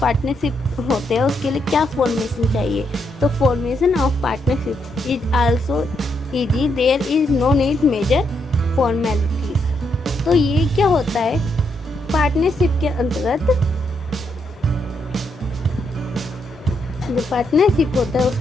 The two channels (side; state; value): both; normal; correlation 0.78